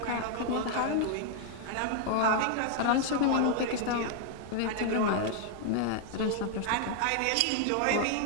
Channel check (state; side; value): different; both; correlation 0.00